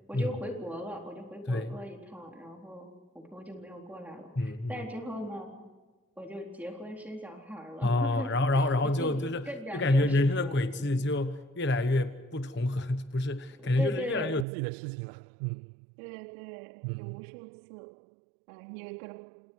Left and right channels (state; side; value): drops out; left; at 14.5 s